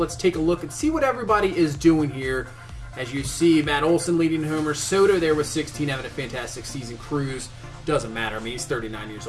take a look and see what everybody is doing here. As you see, Matt Olson leading homers. Soto there with 16, having a fantastic season. Cruz, doesn't matter. I mean, he's 39 years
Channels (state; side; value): identical; both; correlation 1.00